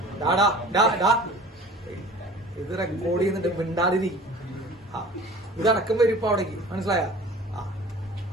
ഇത് റെക്കോർഡ് ചെയ്യുന്നുണ്ട്, മിണ്ടാതിരി. ഇതടക്കം വരും ഇപ്പൊ അവിടേക്ക്, മനസ്സിലായ?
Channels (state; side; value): normal; both; correlation 0.43